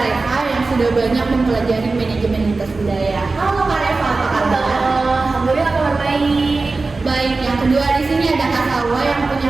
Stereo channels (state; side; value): quieter; left; 3.7 dB